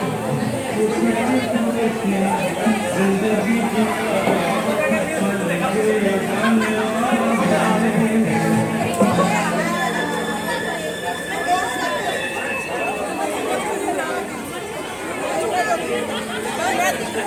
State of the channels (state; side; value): identical; both; correlation 1.00